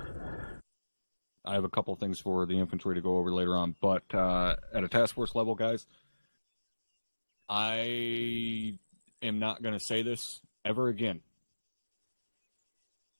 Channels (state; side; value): inverted; both; correlation -1.00